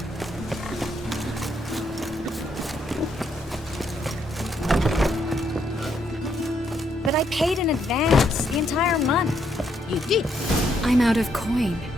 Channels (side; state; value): both; normal; correlation 0.74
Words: But I paid in advance, the entire month. You did. I'm out of coin.